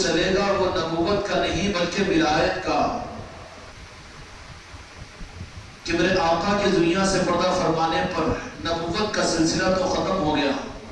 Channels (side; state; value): both; identical; correlation 1.00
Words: گا وہ نبوت کا نہیں بلکہ ولایت کا، کہ میرے آقا کی دنیا سے پردہ فرمانے پر نبوت کا سلسلہ تو ختم ہو گیا،